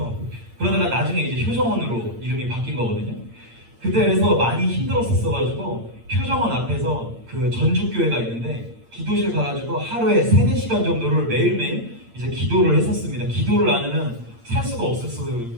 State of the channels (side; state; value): left; late; 8.8 ms